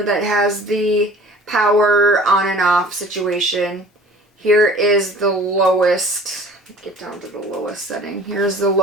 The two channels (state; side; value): normal; both; correlation 0.47